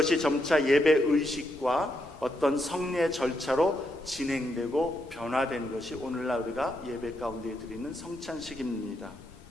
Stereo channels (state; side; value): normal; both; correlation 0.80